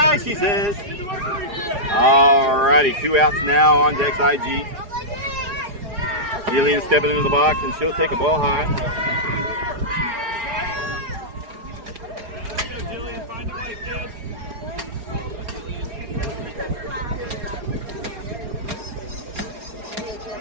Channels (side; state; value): left; late; 4.8 ms